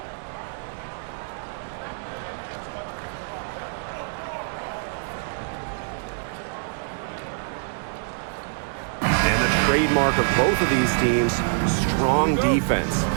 Trademark of both of these teams, strong defense.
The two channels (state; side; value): silent; left; digital silence